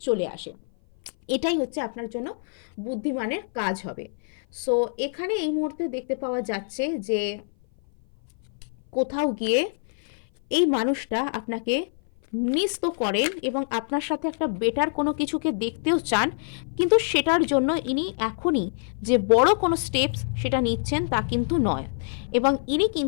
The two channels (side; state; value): right; silent; 57 dB below the other